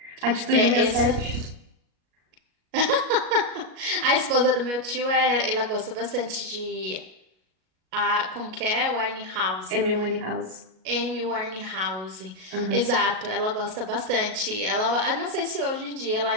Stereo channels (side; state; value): left; late; 37 ms